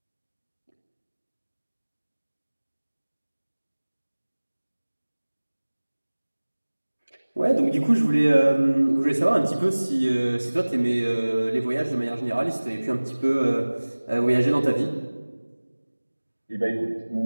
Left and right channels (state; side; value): inverted; both; correlation -1.00